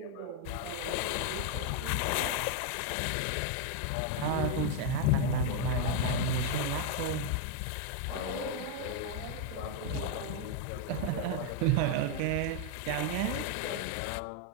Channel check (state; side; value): different; both; correlation 0.01